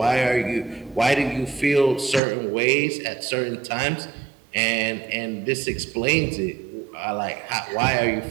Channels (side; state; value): left; drops out; at 2.2 s